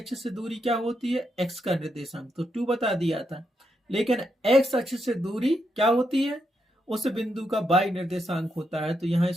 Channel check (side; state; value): both; normal; correlation 0.81